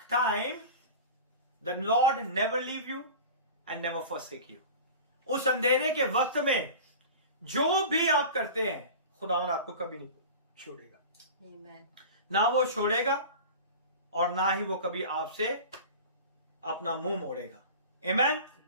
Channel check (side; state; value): both; inverted; correlation -0.35